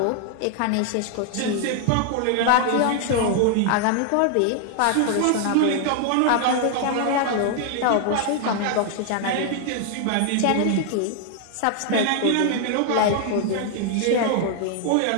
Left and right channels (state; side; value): different; both; correlation 0.00